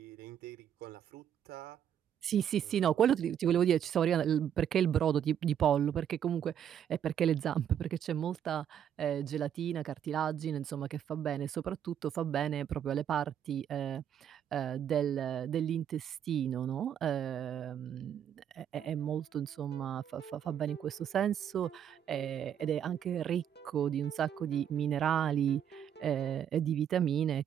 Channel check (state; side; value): quieter; left; 9.3 dB